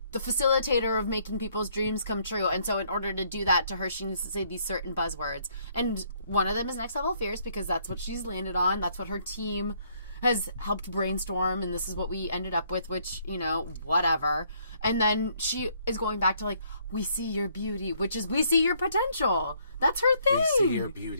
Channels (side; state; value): both; inverted; correlation -0.68